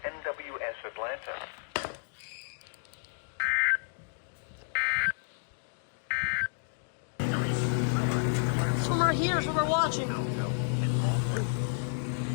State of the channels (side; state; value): right; silent; digital silence